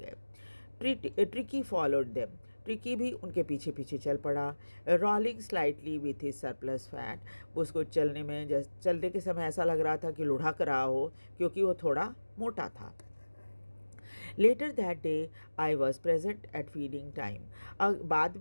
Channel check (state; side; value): inverted; both; correlation -1.00